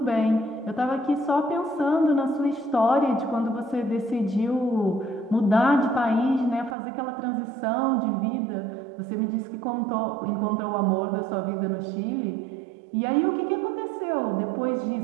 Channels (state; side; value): drops out; left; at 6.8 s